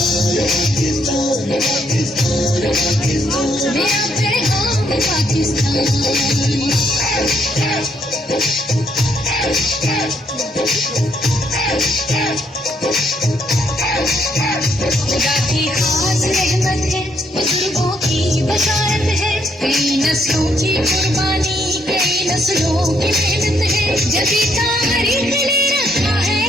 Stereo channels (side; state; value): both; normal; correlation 0.72